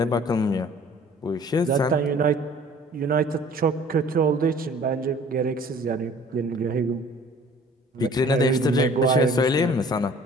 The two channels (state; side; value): normal; both; correlation 0.51